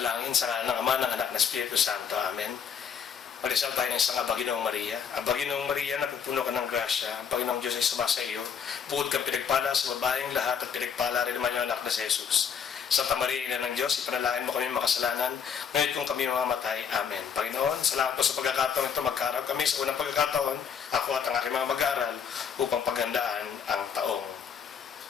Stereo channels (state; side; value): quieter; right; 7.2 dB